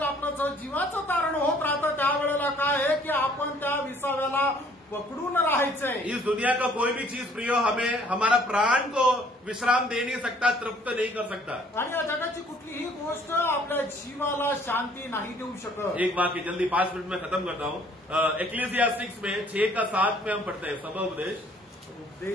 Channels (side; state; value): both; normal; correlation 0.59